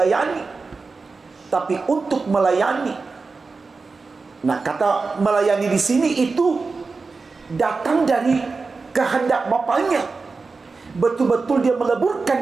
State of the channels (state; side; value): quieter; left; 4.2 dB